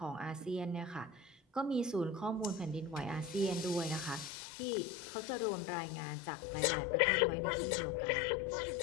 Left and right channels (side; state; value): right; drops out; at 4.3 s